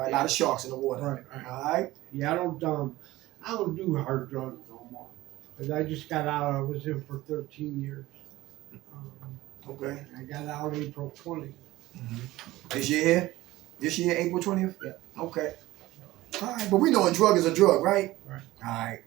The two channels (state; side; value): quieter; left; 17.6 dB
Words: right. A lot of sharks in the water. Right. All right. Yeah, I don't do hard drugs no more. 'Cause I just got out. I was in for 13 years. Okay. I got out April 20th. This year here? This year, April 20th? Yeah. Okay. All right. But we know a drug is a drug, right? Right. All right.